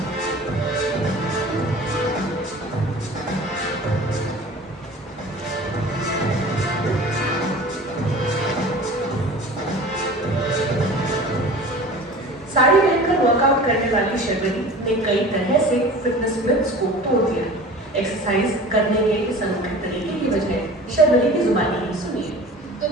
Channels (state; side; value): normal; both; correlation 0.40